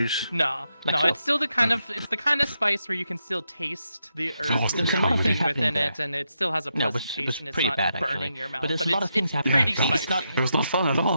No, Like no, so. it's still the kind of spice where you can still taste the earth there's and a lot of everything things within happening it, and it still has a No, it pleasant was taste, and it's pretty not bad, burning actually. your mouth. But there's a But lot of things it's happening. pretty Yeah, spicy. It was not fun at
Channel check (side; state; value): both; inverted; correlation -0.83